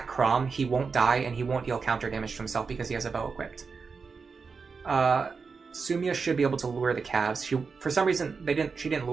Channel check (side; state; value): left; quieter; 5.0 dB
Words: Chrom, he won't die, and he won't deal counter damage to himself because he has a bow equipped. Sumia should be able to lure the calves. For some reason, she didn't